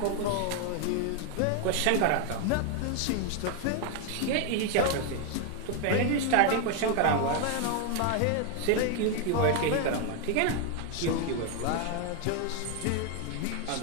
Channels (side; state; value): both; different; correlation 0.01